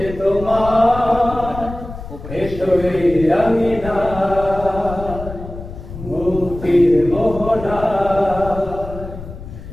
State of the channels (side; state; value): left; noise; rumble, 11 dB below the sound